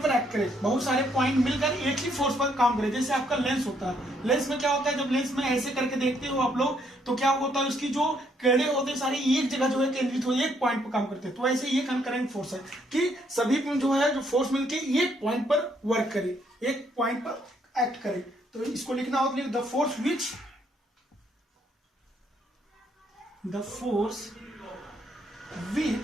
पर एक्ट करे, बहुत सारे पॉइंट मिलकर एक ही फोर्स पर काम करे, जैसे आपका लेंस होता है। लेंस में क्या होता है, जब लेंस में ऐसे करके देखते हो आप लोग तो क्या होता है, उसकी जो किरणें होते हैं सारी एक जगह जो है केंद्रित हो, एक पॉइंट पर काम करते हैं। तो ऐसे ये कंकरेंट फोर्स है कि सभी जो है जो फोर्स मिलकर एक पॉइंट पर वर्क करे, एक पॉइंट पर एक्ट करे। तो इसको लिखना होता है the force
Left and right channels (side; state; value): both; normal; correlation 0.71